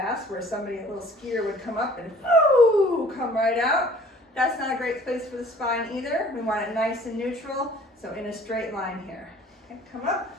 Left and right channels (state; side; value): normal; both; correlation 0.52